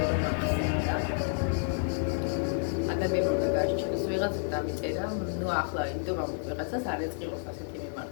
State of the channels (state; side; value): silent; right; digital silence